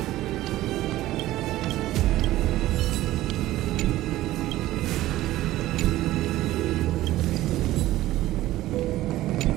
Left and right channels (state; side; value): quieter; left; 15.7 dB